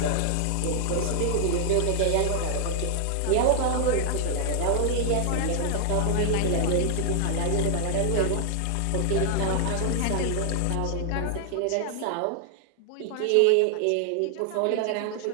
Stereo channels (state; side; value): different; both; correlation 0.00